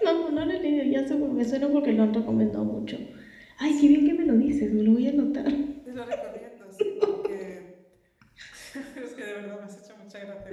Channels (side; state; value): both; identical; correlation 1.00